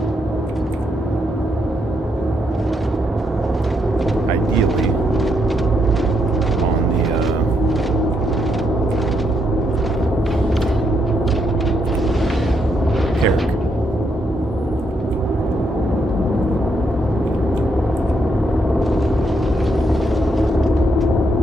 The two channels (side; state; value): both; normal; correlation 0.77